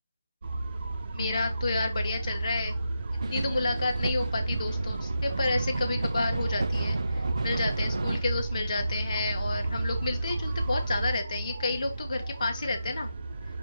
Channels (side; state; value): both; inverted; correlation -0.85